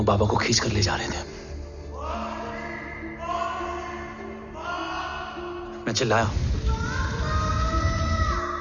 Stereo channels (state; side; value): identical; both; correlation 1.00